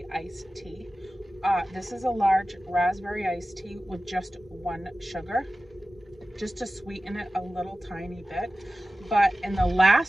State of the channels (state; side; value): normal; both; correlation 0.96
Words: iced tea. This is a large raspberry iced tea with just one sugar, just to sweeten it a little tiny bit. But in the